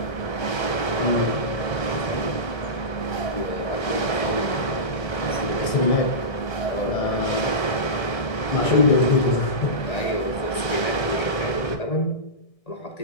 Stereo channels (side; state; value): right; late; 1.6 ms